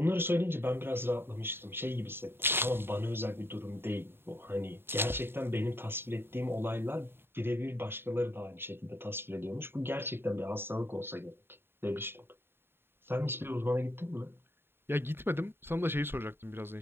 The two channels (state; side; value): late; left; 0.11 ms